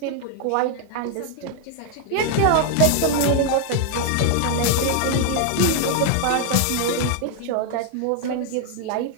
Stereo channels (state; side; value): different; both; correlation 0.00